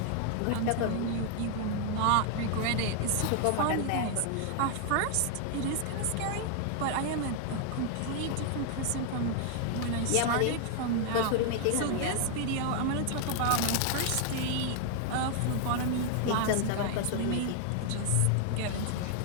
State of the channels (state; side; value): different; both; correlation 0.00